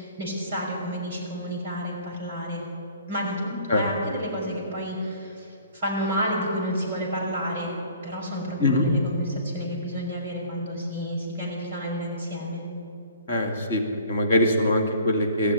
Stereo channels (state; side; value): inverted; both; correlation -0.50